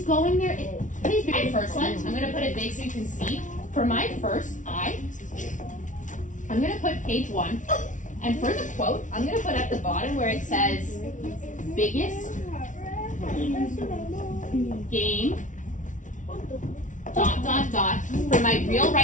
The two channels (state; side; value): late; right; 0.37 ms